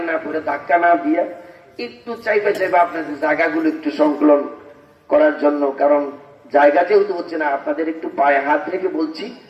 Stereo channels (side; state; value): both; identical; correlation 1.00